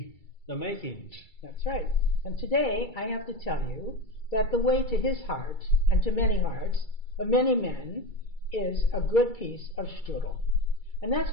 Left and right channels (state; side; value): late; right; 2.3 ms